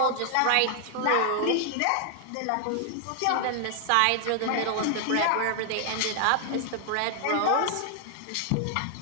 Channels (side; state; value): both; different; correlation 0.00